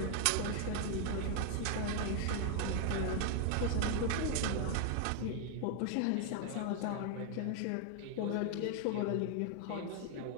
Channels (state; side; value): different; both; correlation 0.00